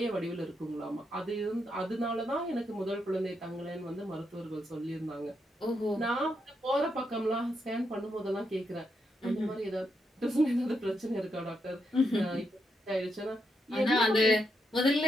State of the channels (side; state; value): both; normal; correlation 0.81